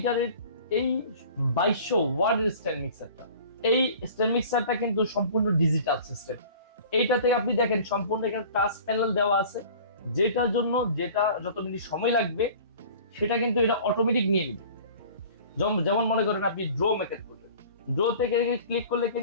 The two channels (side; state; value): both; inverted; correlation -0.45